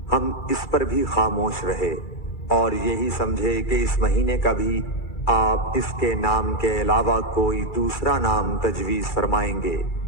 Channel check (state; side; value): late; right; 2.3 ms